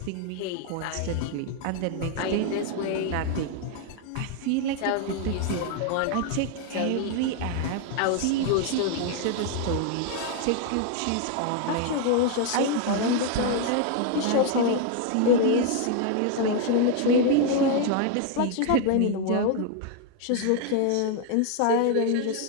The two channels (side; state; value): both; different; correlation 0.01